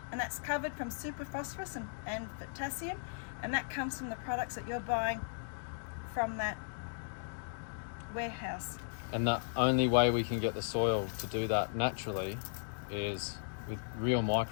and that's covered from superphosphorus and potassium, and that comes from the products that you're buying from that warehouse. And the only way we can get the soil to do that naturally is with real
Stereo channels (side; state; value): right; silent; digital silence